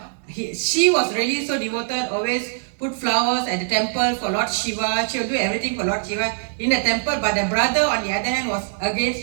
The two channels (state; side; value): silent; left; 64 dB below the other